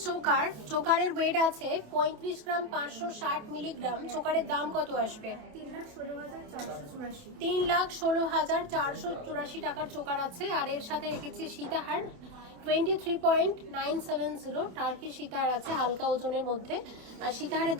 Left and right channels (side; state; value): left; late; 27 ms